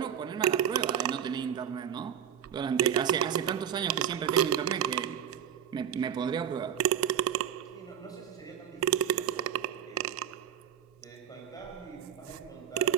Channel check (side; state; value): left; quieter; 9.2 dB